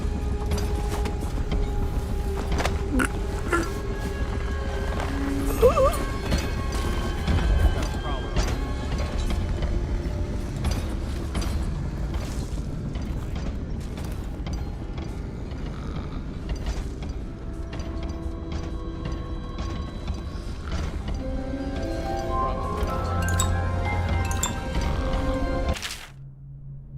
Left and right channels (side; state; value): both; identical; correlation 1.00